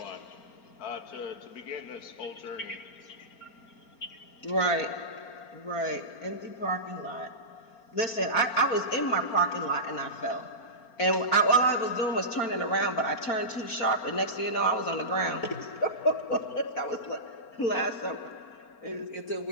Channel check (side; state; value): right; late; 4.4 ms